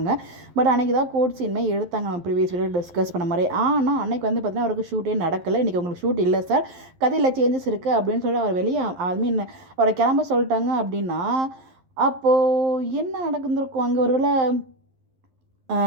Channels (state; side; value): late; left; 11 ms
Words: பட் அன்றைக்கி தான் கோர்ட் சீனுமே எடுத்தாங்க, நம்ம ப்ரீவியஸ் வீடியோ டிஸ்கஸ் பண்ண மாதிரி. ஆனால் அன்றைக்கி வந்து பார்த்திங்கன்னா அவருக்கு ஷூட்டே நடக்கலை. இன்றைக்கி உங்களுக்கு ஷூட் இல்லை சார், கதையில் சேஞ்சஸ் இருக்குது அப்படின்னு சொல்லி அவர் வெளியே மீன் அவரை கிளம்ப சொல்லிட்டாங்க. அப்படின்னா அப்போது என்ன நடந்துருக்கும் அங்கே? ஒருவேளை